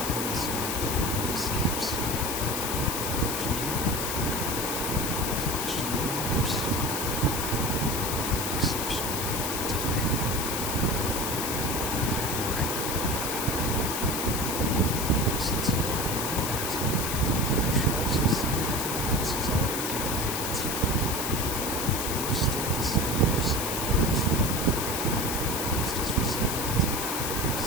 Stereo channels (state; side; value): noise; left; hiss, 2 dB below the sound